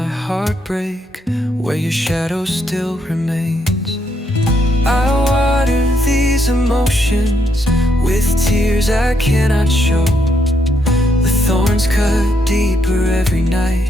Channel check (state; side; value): normal; both; correlation 0.75